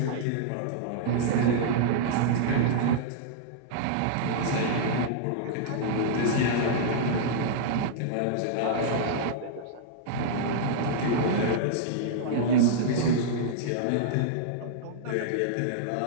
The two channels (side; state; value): both; different; correlation -0.02